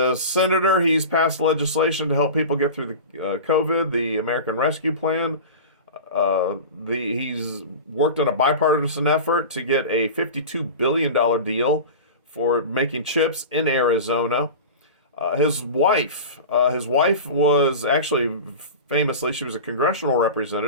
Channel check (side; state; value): both; inverted; correlation -0.31